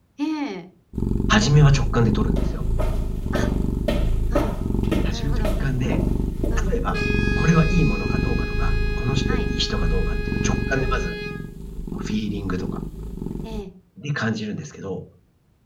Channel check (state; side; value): identical; both; correlation 1.00